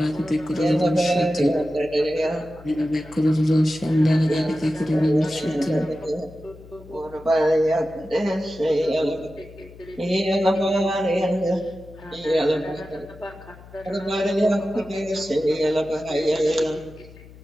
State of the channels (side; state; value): left; noise; hum, 20 dB below the sound